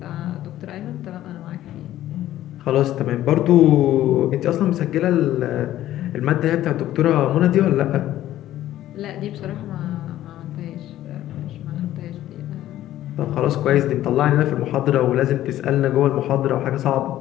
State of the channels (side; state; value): right; quieter; 13.5 dB